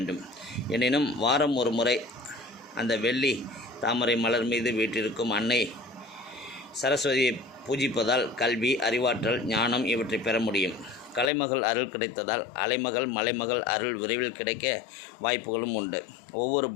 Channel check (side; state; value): right; drops out; at 11.3 s